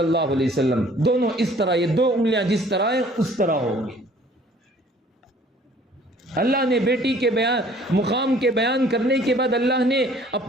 علیہ وسلم دونوں اس طرح، یہ 2 انگلیاں جس طرح ہیں اس طرح ہوں گی۔ اللہ نے بیٹی کے مقام کے بیان کرنے کے بعد اللہ نے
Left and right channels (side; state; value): both; normal; correlation 0.55